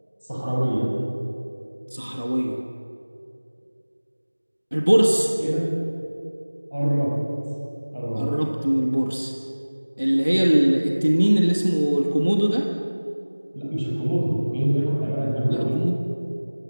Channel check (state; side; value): inverted; both; correlation -1.00